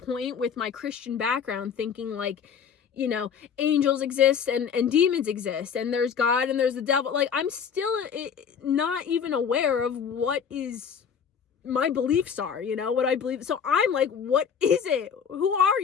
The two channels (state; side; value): quieter; right; 7.1 dB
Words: with my Christian background thinking like, you know, angels exist and demons exist and there's God and there's the devil. Like, I'm still not even aware of what is my beliefs are, you know, what I believe. So I'm like, what is it? Who are